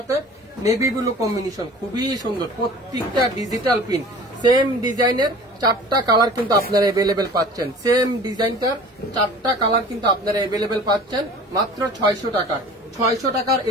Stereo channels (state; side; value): normal; both; correlation 0.43